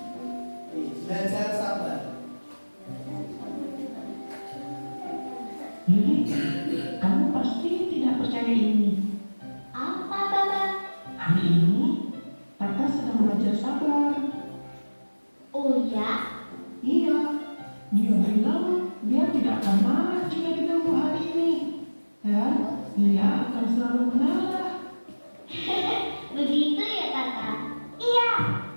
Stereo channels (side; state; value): both; inverted; correlation -1.00